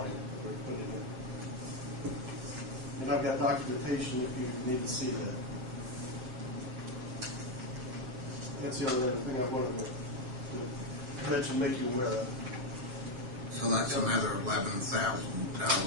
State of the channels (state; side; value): late; left; 7.7 ms